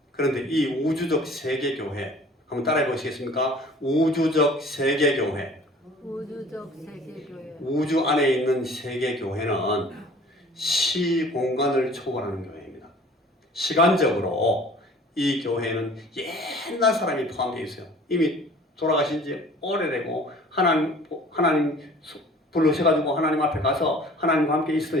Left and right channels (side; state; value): both; normal; correlation 0.49